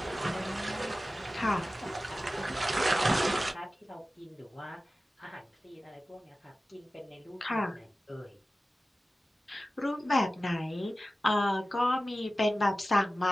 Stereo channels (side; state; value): both; normal; correlation 0.95